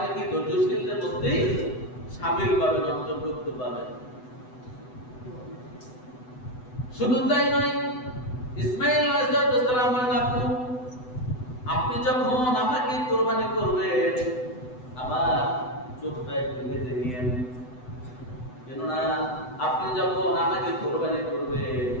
কি ধৈর্যশীলদের মধ্যেই শামিল পাবেন, অন্তর্ভুক্ত পাবেন। শুধু তাই নয়, ইসমাইল আলাইহিস সালাম বলেন, আপনি যখন আমাকে কুরবানি করবেন আমার চোখটা একটু বেঁধে নিয়েন, কেননা আপনি যখন আমাকে কুরবানি করবেন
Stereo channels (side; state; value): right; late; 8.0 ms